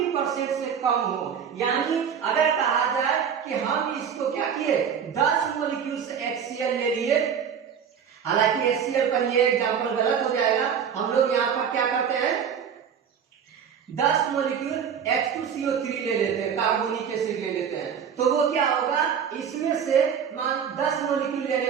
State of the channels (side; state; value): left; quieter; 7.6 dB